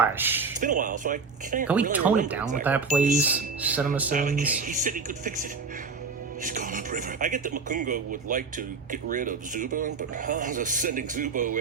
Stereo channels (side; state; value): left; quieter; 4.8 dB